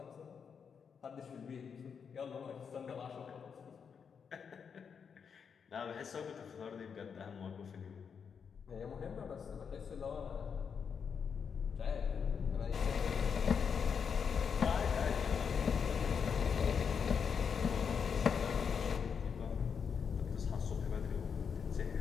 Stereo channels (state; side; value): quieter; right; 6.6 dB